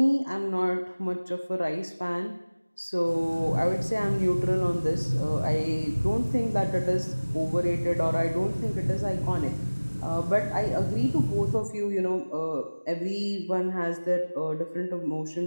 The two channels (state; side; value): inverted; both; correlation -1.00